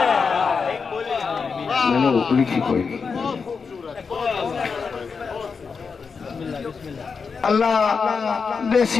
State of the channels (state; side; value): quieter; right; 5.3 dB